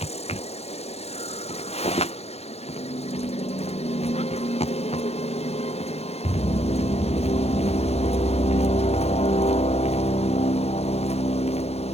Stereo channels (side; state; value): right; late; 0.30 ms